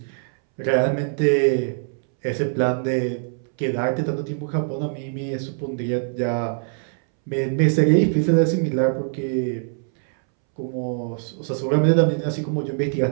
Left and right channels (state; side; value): silent; left; 64 dB below the other